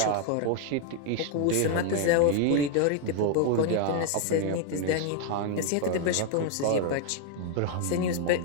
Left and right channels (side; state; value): both; different; correlation 0.00